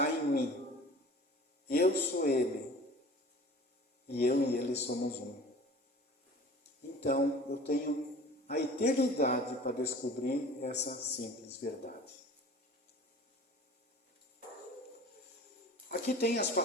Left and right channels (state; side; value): normal; both; correlation 0.43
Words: em mim. Eu sou Ele. E eu e Ele somos um. Então, eu tenho a eternidade para descobrir essa simples verdade. Aqui tem as